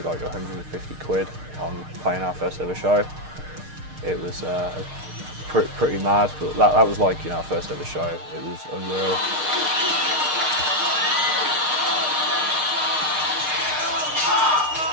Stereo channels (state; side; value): late; left; 6.6 ms